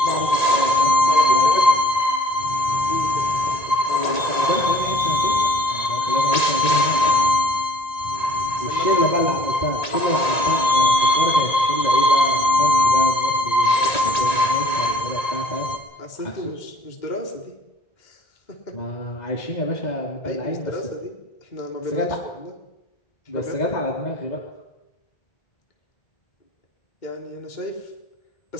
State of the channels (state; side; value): late; right; 1.8 ms